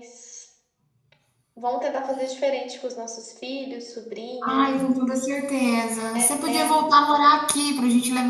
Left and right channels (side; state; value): both; identical; correlation 1.00